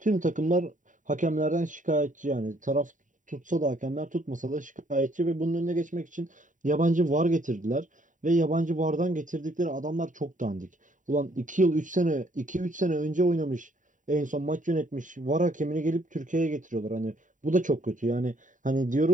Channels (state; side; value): late; left; 0.37 ms